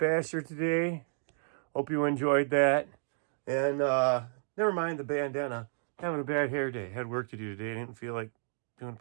today. Hope you enjoyed that. And never mind the bandana. Having a bad hair day. Had work to do today. I didn't feel like doing a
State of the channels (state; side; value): silent; left; digital silence